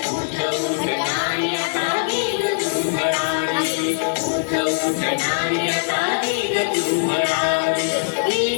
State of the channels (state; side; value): silent; right; digital silence